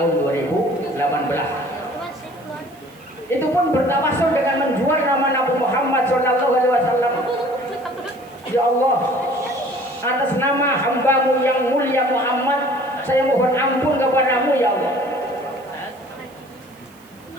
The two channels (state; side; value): noise; right; hiss, 28 dB below the sound